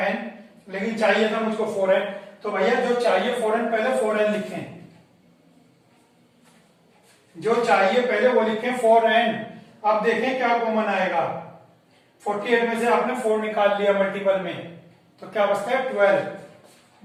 n, लेकिन चाहिए था मुझको 4n, तो भैया जो चाहिए 4n पहले 4n लिखें, जो चाहिए पहले वो लिखें 4n। अब देखें क्या कॉमन आएगा, 48 में से आपने 4 निकाल लिया मल्टीपल में, तो क्या बचता है 12,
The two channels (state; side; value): identical; both; correlation 1.00